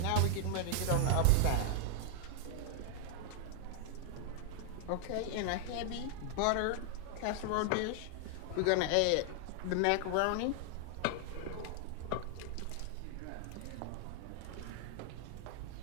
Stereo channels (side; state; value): both; different; correlation 0.00